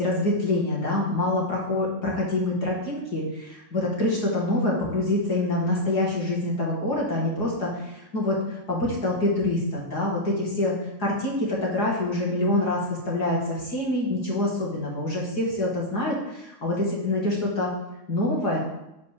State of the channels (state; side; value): late; right; 3.6 ms